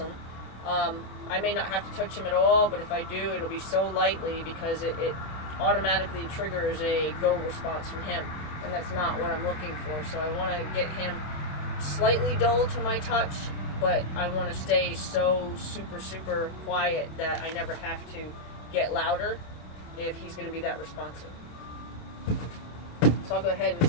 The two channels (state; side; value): late; right; 26 ms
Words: I may not have to touch him at all, but if I do, it'll be so lightly because it automatically triggers a go response from him, and that's not what I'm looking for. So I want to get him slightly dull to my touch, but I want to stay so super quiet that I never have to get louder if he's going to be that responsive. So I'll go ahead and